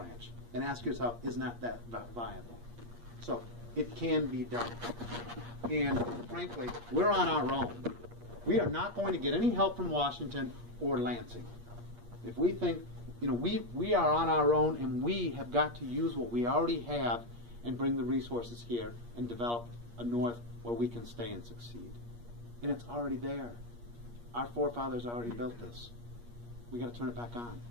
and ask yourself, is not that viable? So it can be done. And frankly, we're on our own. We are not going to get any help from Washington or Lansing. If we think, you know, we are on our own, and we have got to use what we already have and bring the resources here and develop a north where we can stay and succeed. And it's already there. Our forefathers already built this. We got to turn it back on.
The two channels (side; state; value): left; late; 8.5 ms